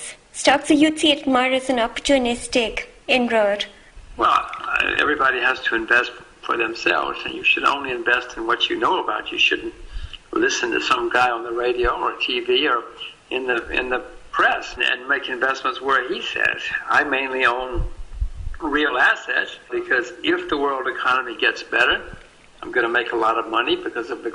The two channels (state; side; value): identical; both; correlation 1.00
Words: stocks? So you'd see it more as an opportunistic inroad. Well, everybody has to invest for themselves, and you should only invest in what you know about. You shouldn't listen to some guy on the radio or TV or in the press and make investments where he says. I mainly own real assets because if the world economy gets better, I'm going to make a lot of money because of the